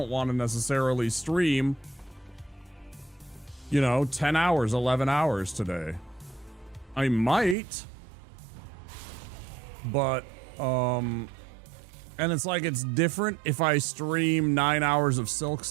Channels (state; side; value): drops out; left; at 7.6 s